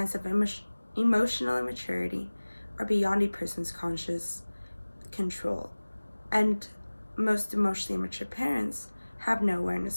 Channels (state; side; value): inverted; both; correlation -1.00